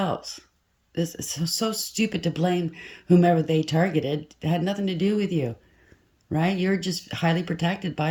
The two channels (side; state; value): both; identical; correlation 1.00